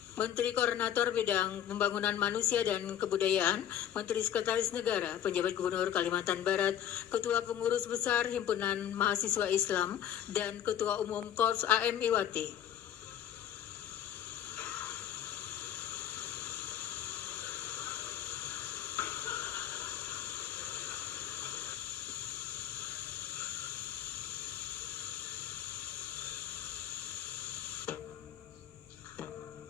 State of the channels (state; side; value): quieter; right; 10.5 dB